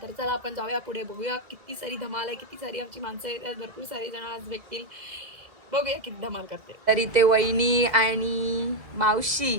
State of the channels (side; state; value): left; late; 2.0 ms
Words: तर चला आपण जाऊया पुढे, बघूया किती सारी धमाल आहे, किती सारी आमची माणसं आहेत, भरपूर सारे जण आज भेटतील. बघूया किती धमाल करते. तर इथे वहिनी आणि मावशी